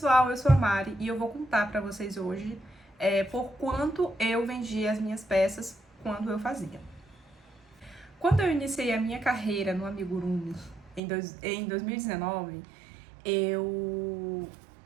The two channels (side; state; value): left; drops out; at 11.0 s